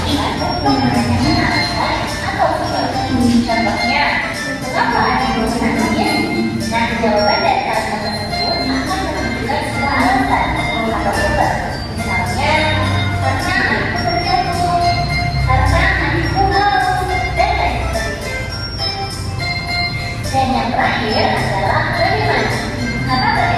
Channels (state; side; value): identical; both; correlation 1.00